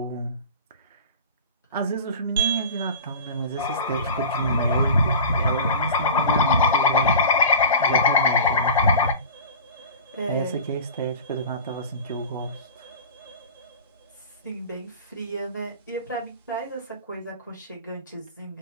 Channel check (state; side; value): inverted; both; correlation -0.36